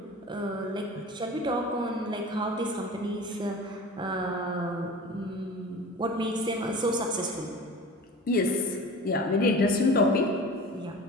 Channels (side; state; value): both; normal; correlation 0.37